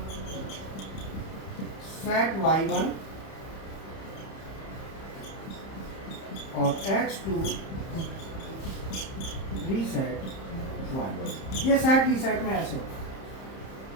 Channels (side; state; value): right; late; 30 ms